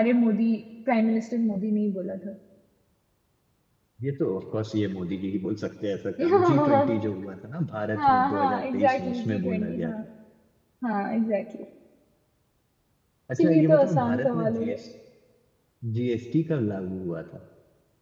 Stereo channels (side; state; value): both; identical; correlation 1.00